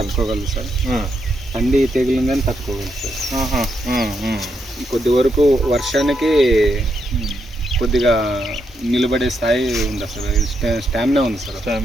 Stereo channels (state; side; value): normal; both; correlation 0.80